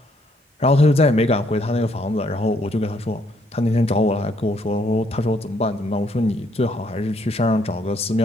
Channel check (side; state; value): both; normal; correlation 0.69